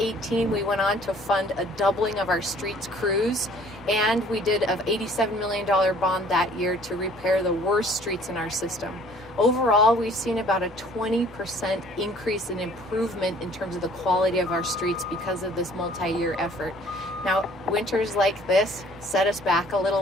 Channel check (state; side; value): normal; both; correlation 0.55